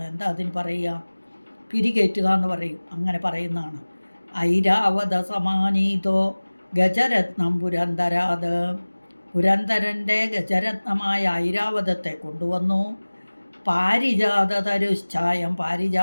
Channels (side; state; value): both; inverted; correlation -1.00